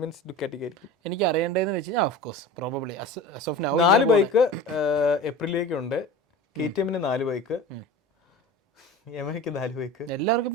ഡുക്കാറ്റി ആയിരിക്കും. എനിക്ക് അറിയേണ്ടതെന്ന് വെച്ച് കഴിഞ്ഞാൽ ഓഫ് കോഴ്സ് പ്രോബബ്ലി 4 ബൈക്ക് ഏപ്രിലേക്കുണ്ട്. KTM-ന് 4 ബൈക്ക്, യമഹയ്ക്ക് 4 ബൈക്ക്, എല്ലാവർക്കും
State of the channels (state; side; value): normal; both; correlation 0.35